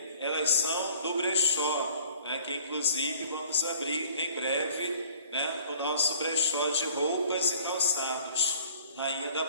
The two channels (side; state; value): both; inverted; correlation -0.51